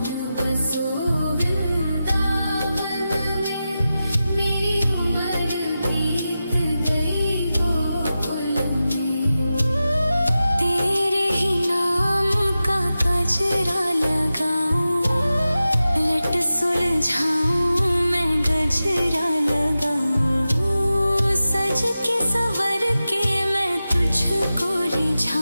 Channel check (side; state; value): both; inverted; correlation -0.93